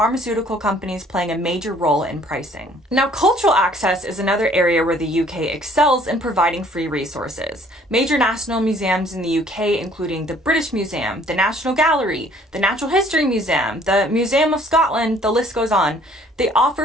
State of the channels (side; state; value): both; normal; correlation 0.58